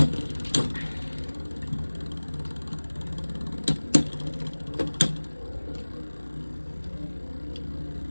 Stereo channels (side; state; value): both; inverted; correlation -1.00